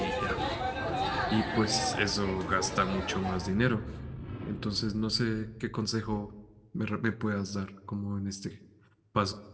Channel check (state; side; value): identical; both; correlation 1.00